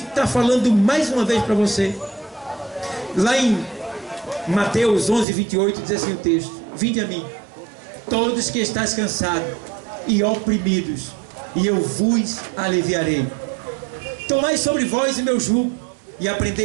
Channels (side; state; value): left; drops out; at 5.2 s